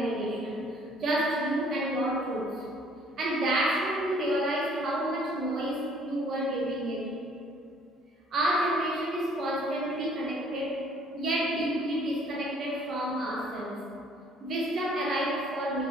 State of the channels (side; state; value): both; normal; correlation 0.59